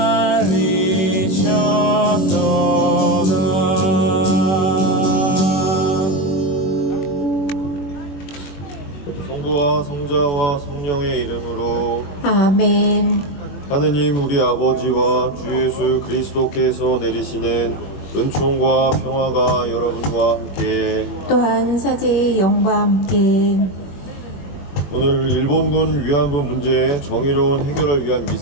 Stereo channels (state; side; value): late; right; 21 ms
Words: 매달리셨도다. 성부와 성자와 성령의 이름으로 아멘. 하느님 우리 아버지와 주 예수 그리스도께서 내리시는 은총과 평화가 여러분과 함께 또한 사제의 영과 함께 오늘 일본군 위안부 문제의 정의로운 해결을 위한